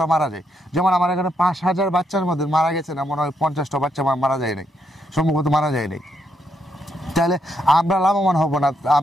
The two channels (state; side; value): normal; both; correlation 0.77